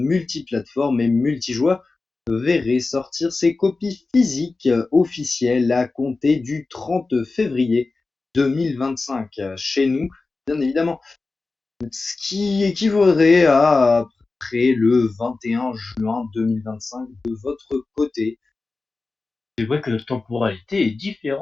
et multijoueur verrait sortir ses copies physiques officielles à compter du 30 février 2025 chez nous, bien évidemment. Ce qui équivaudrait à peu près le 21 juin 2025 de votre côté. C'est vrai que la temporalité est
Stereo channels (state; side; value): quieter; right; 3.7 dB